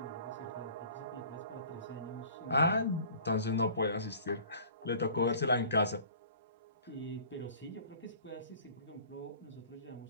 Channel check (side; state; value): both; inverted; correlation -0.47